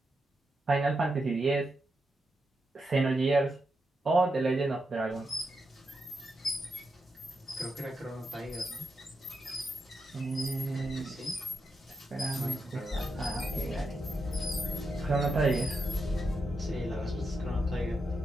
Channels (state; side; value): normal; both; correlation 0.85